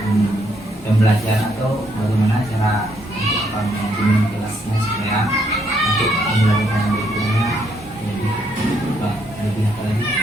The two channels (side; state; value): both; normal; correlation 0.72